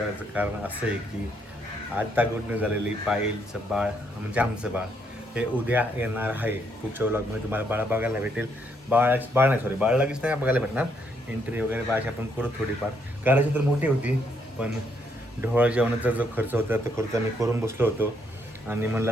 कारण असं आहे की आता गुड न्यूज झालेली पायलचं बाळ म्हणजे आमचं बाळ हे उद्या येणार आहे. पुढच्या ब्लॉगमध्ये तुम्हाला बाळा बघायला भेटेल. बाळ नाही सॉरी बाळ लगेच नाही बघायला भेटणार. एंट्री वगैरे बाळाची आपण करू थोडीफार करायची तर मोठी होती पण ढोळ जेवणाचा जो खर्च होता तो खर्च आम्ही करून बसलो होतो आणि म्हणलं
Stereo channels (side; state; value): both; normal; correlation 0.73